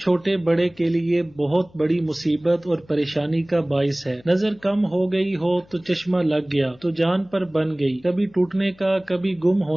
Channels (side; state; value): left; noise; hum, 28 dB below the sound